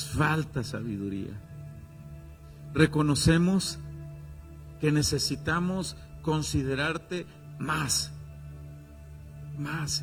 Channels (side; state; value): both; identical; correlation 1.00